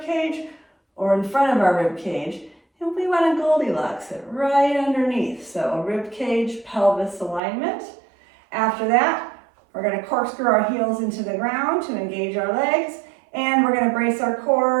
cage or in front of our rib cage. And we want to Goldilocks it right underneath. So a rib cage, pelvis alignment. After that, we're going to corkscrew our heels into the ground to engage our legs. And we're going to brace our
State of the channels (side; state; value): left; drops out; at 7.4 s